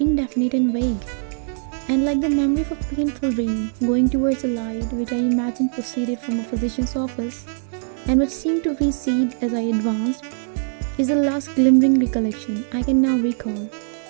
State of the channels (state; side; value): silent; left; digital silence